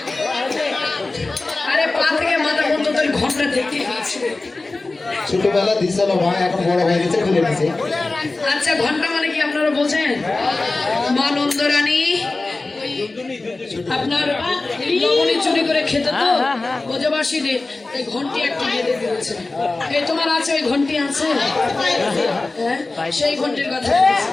আরে পা থেকে মাথা পর্যন্ত তোর ঘন্টা দেখতে পাচ্ছি ছোটবেলা দিছিল ভাই এখন বড় হয়ে গেছে খুলে দিছে আচ্ছা ঘন্টা মানে কি আপনারা বোঝেন মা নন্দরানী আপনার লবণী চুরি করে খেতে তো ব্রজবাসীদের এই ঘন্টি একটা বেঁধে দিয়েছে এই তোমার আছে ওই ঘন্টি আছে হ্যাঁ সেই ঘন্টির কথা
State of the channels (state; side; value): quieter; right; 3.3 dB